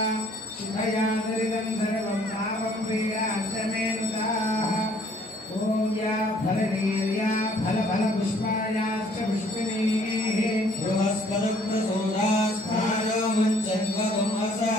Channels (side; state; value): both; normal; correlation 0.61